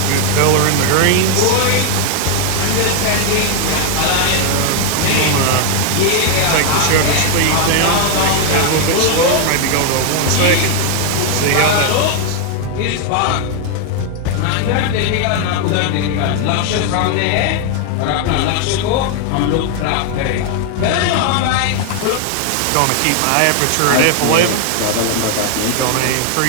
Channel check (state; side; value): different; both; correlation 0.01